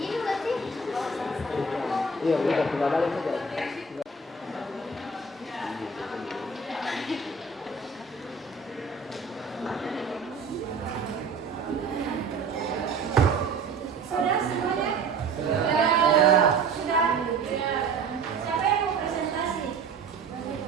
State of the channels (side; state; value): left; quieter; 4.1 dB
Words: berarti Iya, udah tinggal balik saja. sudah semuanya? Sudah. Siapa yang mau presentasi?